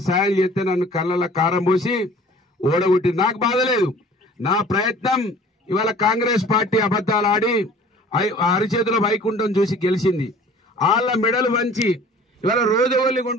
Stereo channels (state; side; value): normal; both; correlation 0.48